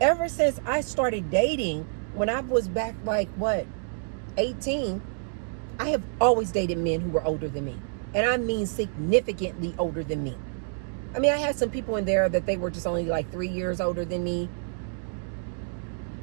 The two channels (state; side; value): silent; left; digital silence